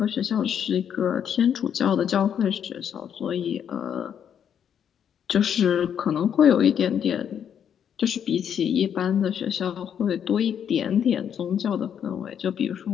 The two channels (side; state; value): right; quieter; 8.6 dB